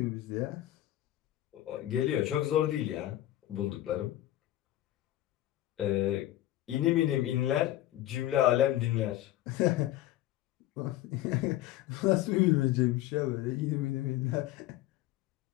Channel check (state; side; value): quieter; right; 14.4 dB